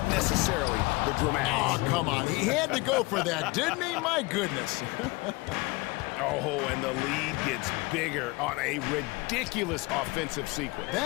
necessarily the dramatics. Oh, come on. He had to go for that, didn't he? My goodness. Oh, and the lead gets bigger on a ridiculous offensive sequence.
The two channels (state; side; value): quieter; right; 24.2 dB